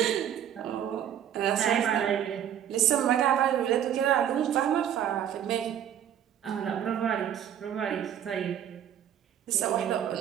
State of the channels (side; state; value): left; quieter; 9.9 dB